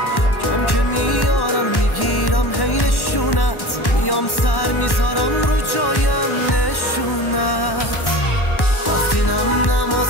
کم که میارم میگیرم هی نشونت، میام سر میذارم رو جایم نشونت. وقتی نم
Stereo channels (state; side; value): late; right; 1.1 ms